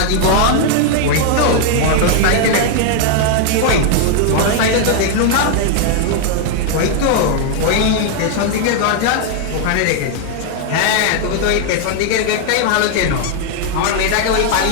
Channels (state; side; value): different; both; correlation 0.00